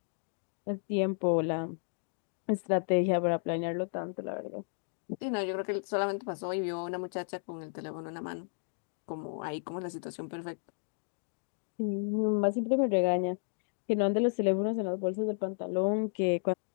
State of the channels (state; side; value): silent; right; digital silence